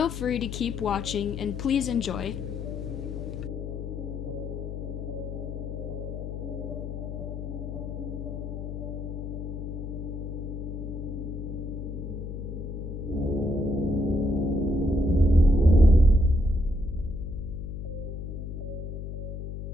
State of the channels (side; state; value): left; noise; hum, 6 dB below the sound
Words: free to keep watching and please enjoy.